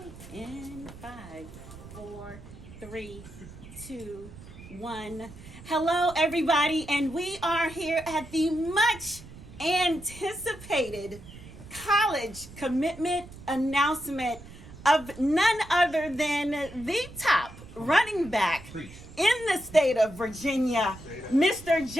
In 5, 4, 3, 2, 1. Hello, everybody, and we are here at the much anticipated college commitment announcement of none other than the top running back in the state of Virginia, Mr.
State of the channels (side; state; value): right; noise; rumble, 17 dB below the sound